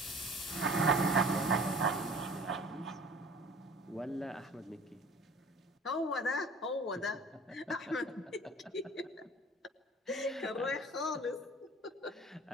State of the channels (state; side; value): normal; both; correlation 0.46